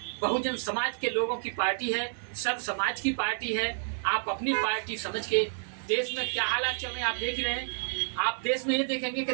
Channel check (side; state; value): left; silent; digital silence